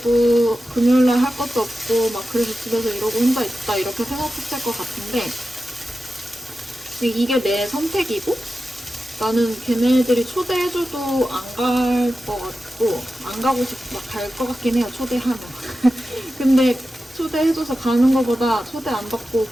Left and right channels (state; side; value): normal; both; correlation 0.93